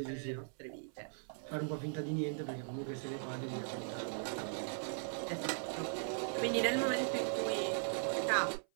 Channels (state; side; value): silent; left; 52 dB below the other